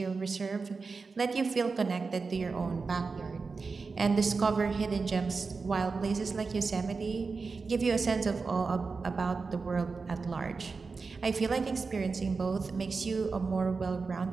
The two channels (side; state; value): left; quieter; 4.5 dB